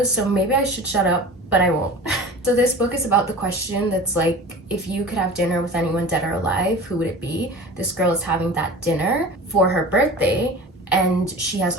so maybe I should shut up, but I won't. So this book is about the question that's like, if you could have dinner with anyone dead or alive, who would it be? This girl is having that dinner for her birthday, and she has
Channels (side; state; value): both; normal; correlation 0.37